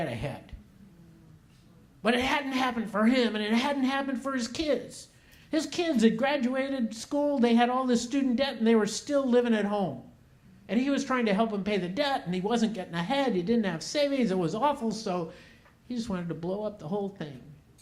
ahead. But it hadn't happened for him, and it hadn't happened for his kids. His kids had graduated school, they had all this student debt, and they were still living at home. And he was trying to help them pay the debt, and he wasn't getting ahead. He didn't have savings. It was awful, so he just wanted to blow up the whole thing.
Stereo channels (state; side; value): identical; both; correlation 1.00